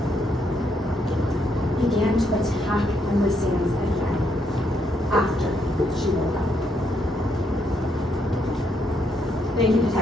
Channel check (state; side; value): normal; both; correlation 0.76